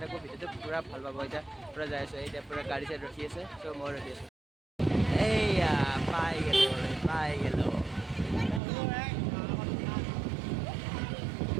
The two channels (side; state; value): left; drops out; at 8.6 s